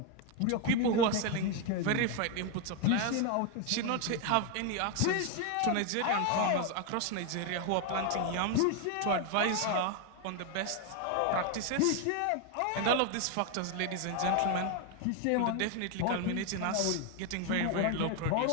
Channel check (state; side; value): different; both; correlation 0.01